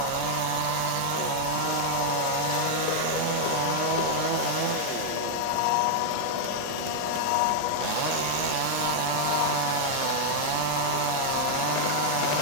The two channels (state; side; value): different; both; correlation 0.00